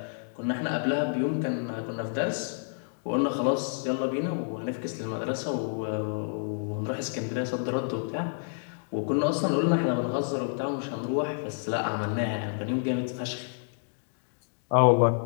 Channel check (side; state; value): right; silent; digital silence